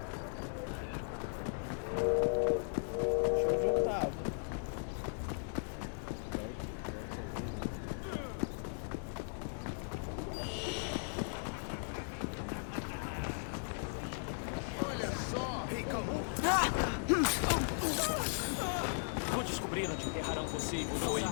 Deixa eu juntar. Olha só! Ei, calma.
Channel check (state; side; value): silent; right; 53 dB below the other